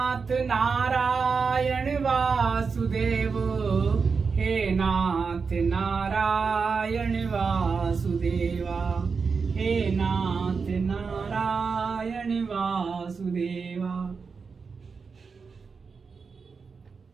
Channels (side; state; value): left; quieter; 5.2 dB